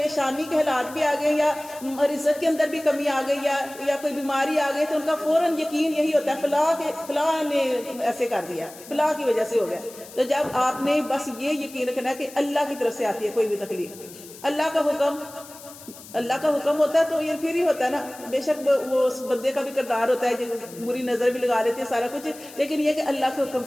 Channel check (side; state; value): left; noise; hiss, 18 dB below the sound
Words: کے حالات بھی آ گئے، یا رزق کے اندر بھی کمی آ گئی یا کوئی بیماری آ گئی، تو ان کا فوراً یقین یہی ہوتا ہے فلاں نے ایسے کر دیا، فلاں کی وجہ سے ہو گیا۔ تو جب آپ نے بس یہ یقین رکھنا ہے کہ اللہ کی طرف سے آتی ہے کوئی بھی تکلیف، اللہ کا حکم ہوتا ہے تو یہ پھر ہی ہوتا ہے نا، بے شک وہ اس بندے کا بھی کردار ہوتا ہے جو بری نظر بھی لگا لیتے ہیں سارا کچھ، لیکن یہ کہ اللہ کے حکم